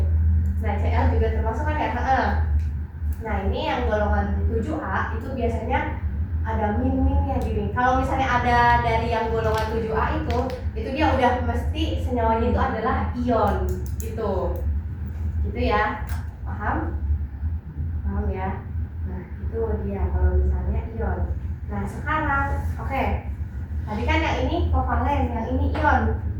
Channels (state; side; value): identical; both; correlation 1.00